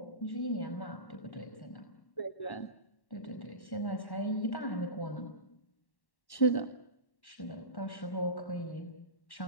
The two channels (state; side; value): late; right; 1.1 ms